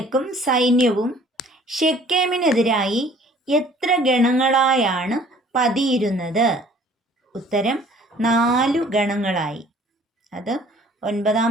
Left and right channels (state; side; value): normal; both; correlation 0.54